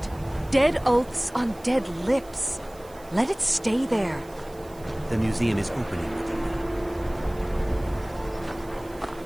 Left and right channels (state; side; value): noise; right; hiss, 24 dB below the sound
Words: Dead oaths on dead lips. Let it stay there. The museum is opening, Medina.